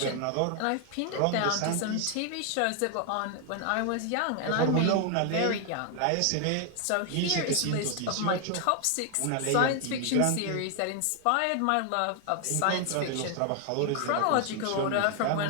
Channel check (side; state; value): both; different; correlation 0.00